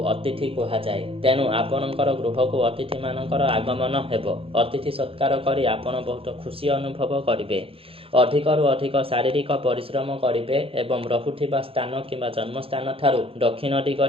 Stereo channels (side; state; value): left; late; 0.27 ms